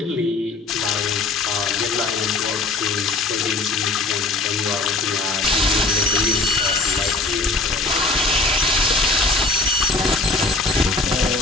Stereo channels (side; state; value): right; quieter; 3.4 dB